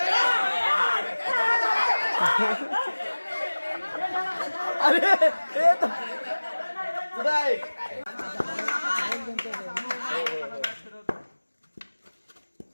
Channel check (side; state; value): both; inverted; correlation -1.00